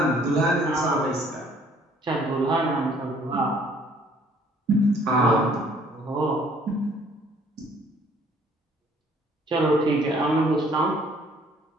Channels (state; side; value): normal; both; correlation 0.59